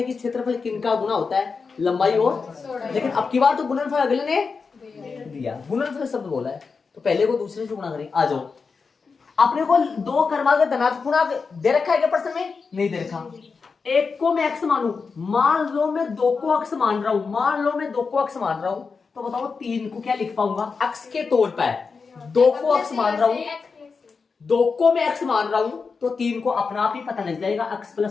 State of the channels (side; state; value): right; quieter; 5.0 dB